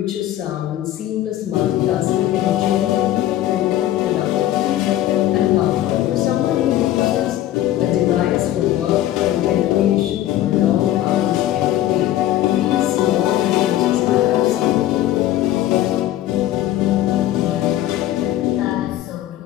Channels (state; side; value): quieter; right; 13.5 dB